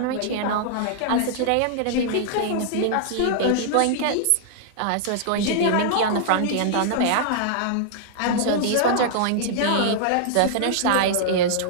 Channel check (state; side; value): different; both; correlation -0.01